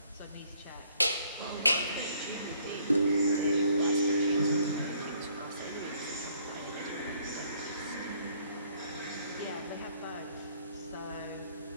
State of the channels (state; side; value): inverted; both; correlation -0.65